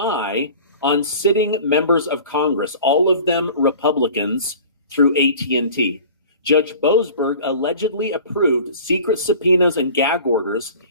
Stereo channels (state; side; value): inverted; both; correlation -0.43